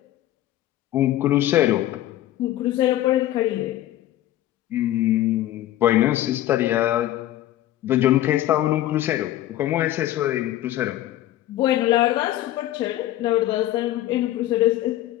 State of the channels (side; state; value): right; quieter; 14.0 dB